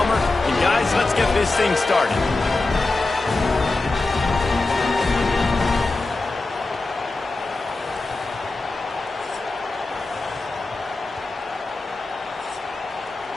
And guys, let's get this thing started.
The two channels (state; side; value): quieter; right; 3.3 dB